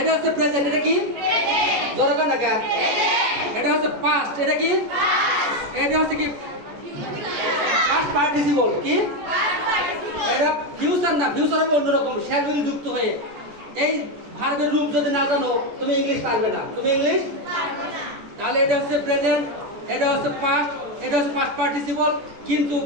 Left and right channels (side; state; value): left; late; 14 ms